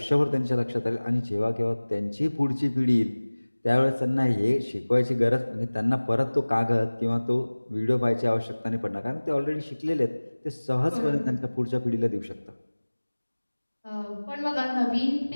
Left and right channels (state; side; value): inverted; both; correlation -1.00